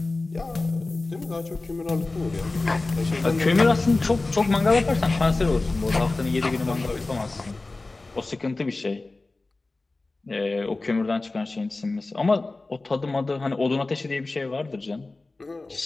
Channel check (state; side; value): quieter; right; 3.3 dB